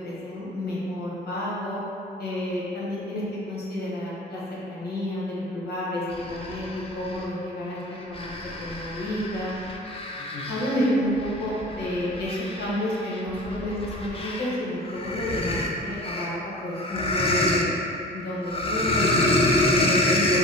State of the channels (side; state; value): both; normal; correlation 0.37